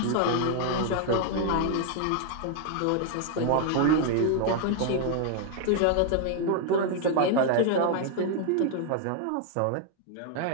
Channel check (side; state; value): both; different; correlation 0.00